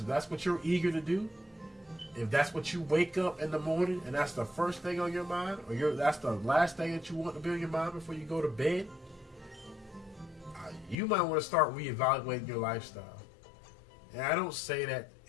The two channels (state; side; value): drops out; right; at 11.0 s